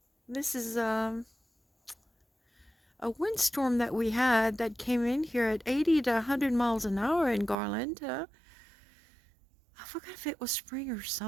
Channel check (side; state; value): left; drops out; at 7.6 s